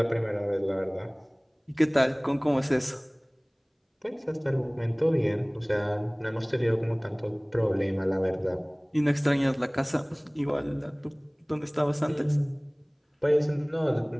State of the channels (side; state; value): both; identical; correlation 1.00